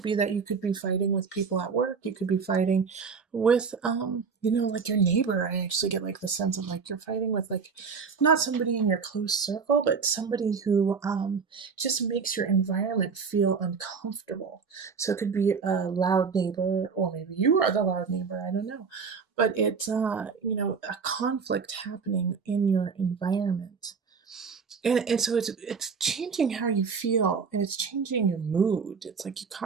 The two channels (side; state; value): left; quieter; 5.5 dB